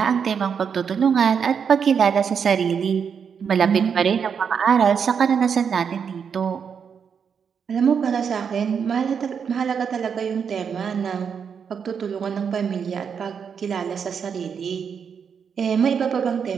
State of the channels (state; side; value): quieter; left; 6.8 dB